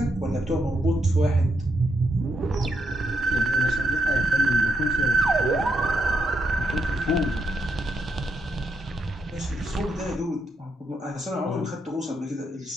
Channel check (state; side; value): normal; both; correlation 0.80